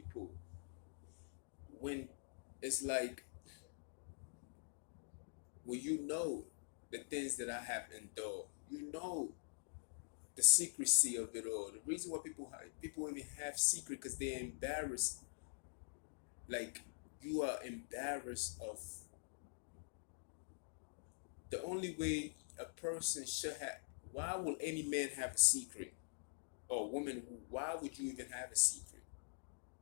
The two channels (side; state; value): right; silent; digital silence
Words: when it's like, well, you know the things that I have endured. You know the secrecy of it all. The reason why people even have secret because they're embarrassed. Like you are embarrassed of the only way a person should have. Why will any man have a secret or woman? Why would you even have a secret?